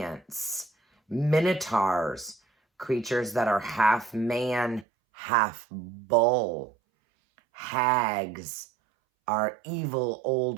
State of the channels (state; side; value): drops out; left; at 4.9 s